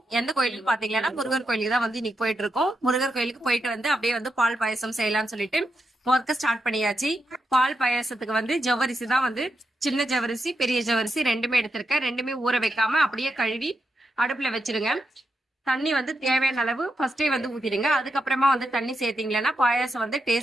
எந்த கோயிலுக்கு பாத்தீங்கன்னா முருகர் கோயிலுக்கு தான் வந்து இன்னைக்கு போயிட்டு இருக்கோம். முருகர் கோயிலுக்கு போயிட்டு வந்து அப்படியே வந்து பால் பாயசம் செய்யலாம்னு சொல்லிட்டு ஒர்க்க ஸ்டார்ட் பண்ணியாச்சு. பால் பாயசத்துக்கு வந்து ஜவ்வரிசி தான் வந்து சின்ன ஜவ்வரிசி பெரிய ஜவ்வரிசி ரெண்டுமே எடுத்திருக்கேன். ரெண்டுமே ஊற வைக்காம அப்படியே கழுவி அடுப்புல வச்சிருங்க. தண்ணி வந்து தேவையான அளவு ஃபர்ஸ்டே வந்து ஊத்திடுங்க. அதுக்கப்புறமா வந்து தண்ணி சேர்த்தீங்கன்னா பாயாசம் வந்து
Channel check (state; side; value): normal; both; correlation 0.85